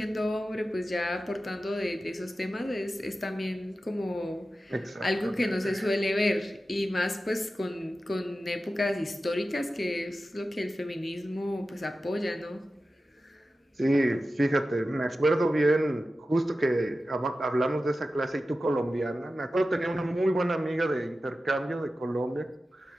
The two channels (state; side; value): normal; both; correlation 0.93